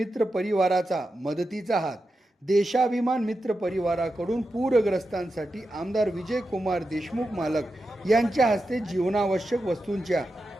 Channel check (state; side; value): normal; both; correlation 0.89